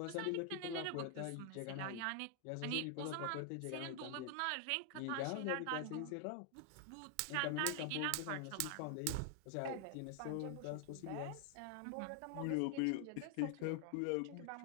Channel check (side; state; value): both; different; correlation 0.00